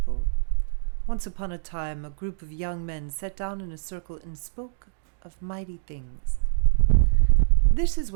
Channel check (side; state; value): left; silent; digital silence